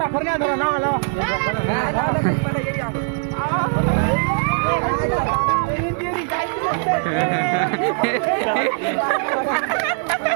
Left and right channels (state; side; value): silent; left; digital silence